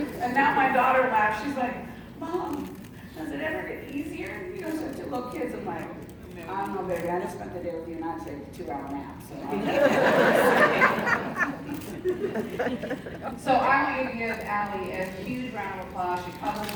And now my daughter laughs. She's like, Mom, does it ever get easier? You know, such little kids. I'm like, I don't know, baby. I just spent the day with you, and I'd take a 2-hour nap. So I want you to give Allie a huge round of applause. She published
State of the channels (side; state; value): both; identical; correlation 1.00